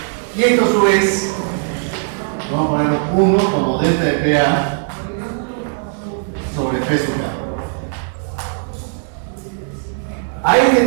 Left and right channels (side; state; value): left; silent; digital silence